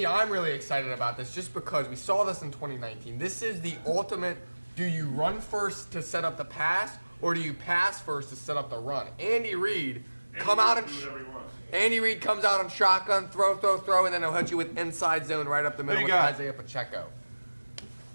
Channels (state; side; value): inverted; both; correlation -1.00